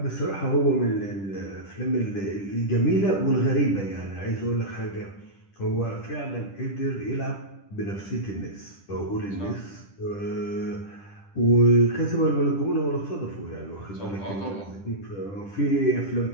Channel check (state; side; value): late; right; 10 ms